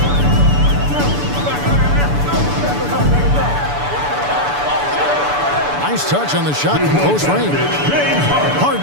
Nice touch on the shot from close range.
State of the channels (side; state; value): left; late; 6.9 ms